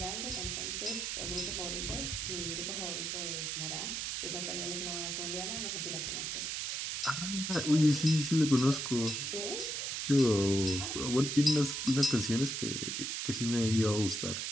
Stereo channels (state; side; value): noise; right; hiss, 2 dB below the sound